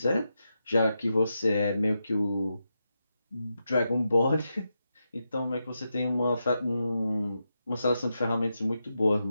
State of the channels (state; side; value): inverted; both; correlation -0.87